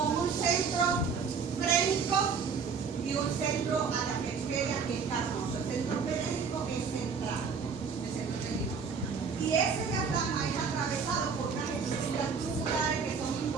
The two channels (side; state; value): left; quieter; 5.7 dB